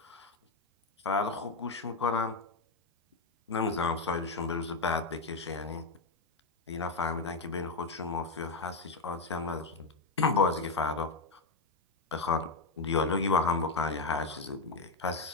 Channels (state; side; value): quieter; right; 3.8 dB